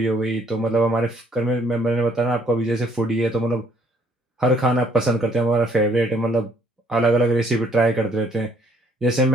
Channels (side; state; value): both; normal; correlation 0.64